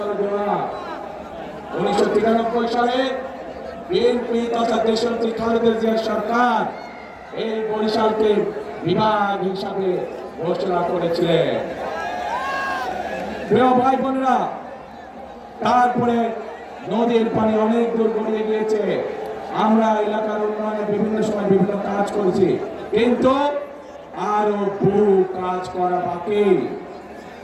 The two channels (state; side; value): identical; both; correlation 1.00